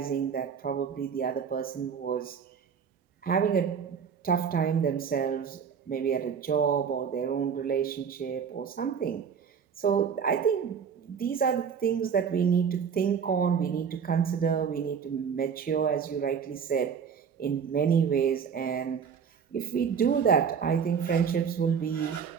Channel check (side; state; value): left; quieter; 6.9 dB